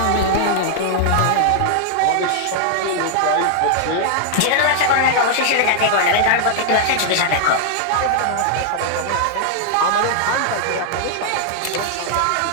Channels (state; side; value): different; both; correlation 0.00